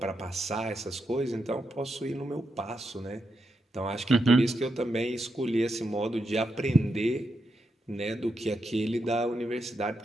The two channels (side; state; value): both; normal; correlation 0.84